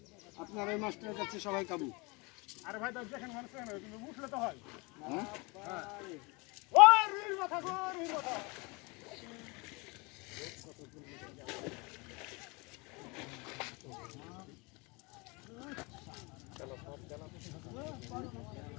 আপনার এই মাছটার কাছে সবাই কাবু। আরে ভাই তো দেখেন মানুষ না কিন্তু উঠলে তো হয়। হ্যাঁ ও রুইর মাথা গো রুইর মাথা।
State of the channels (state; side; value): quieter; right; 27.7 dB